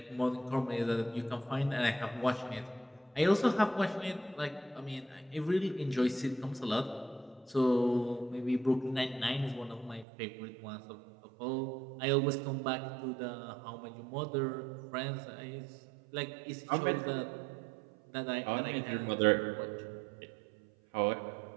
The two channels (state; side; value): drops out; left; at 10.1 s